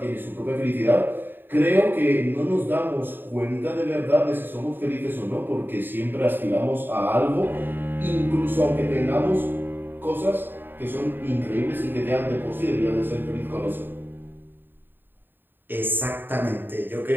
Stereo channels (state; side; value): late; left; 0.095 ms